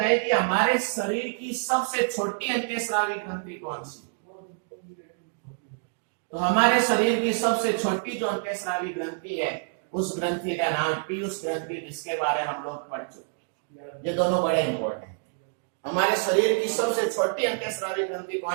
कि हमारे शरीर की सबसे छोटी अंतःस्रावी ग्रंथि कौन सी? तो हमारे शरीर की सबसे छोटी जो अंतःस्रावी ग्रंथि है उस ग्रंथि का नाम पीयूष ग्रंथि, जिसके बारे में हम लोग पढ़ चुके। ये दोनों बड़े इंपॉर्टेंट। हमारे शरीर की सबसे छोटी अंतःस्रावी ग्रंथि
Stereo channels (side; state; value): left; silent; digital silence